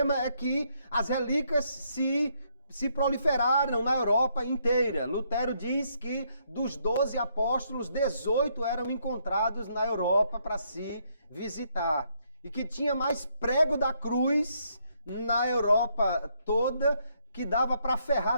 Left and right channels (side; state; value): both; inverted; correlation -0.73